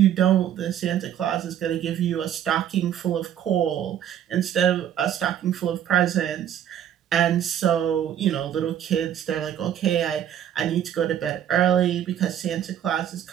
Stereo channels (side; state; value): left; quieter; 10.1 dB